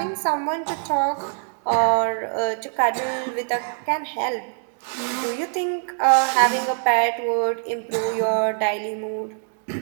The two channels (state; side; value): silent; left; 59 dB below the other